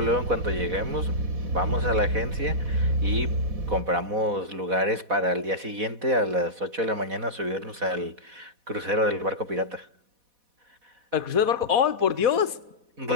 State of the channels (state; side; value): late; left; 4.1 ms